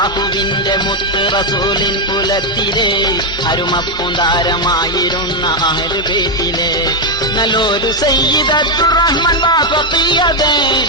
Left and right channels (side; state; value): both; normal; correlation 0.03